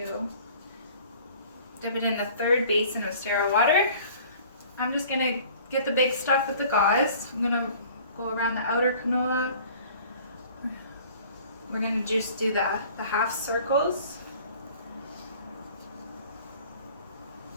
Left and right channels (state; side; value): inverted; both; correlation -0.50